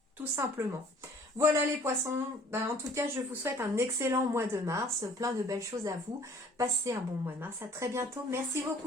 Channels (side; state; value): both; normal; correlation 0.54